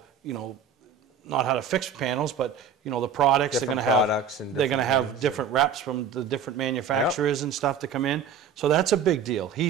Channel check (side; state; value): left; quieter; 6.7 dB